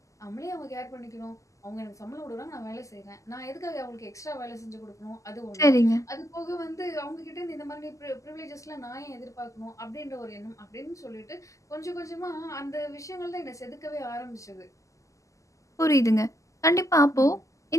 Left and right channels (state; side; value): late; right; 0.16 ms